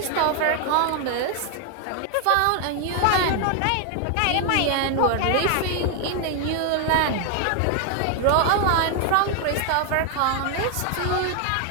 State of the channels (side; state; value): both; different; correlation 0.00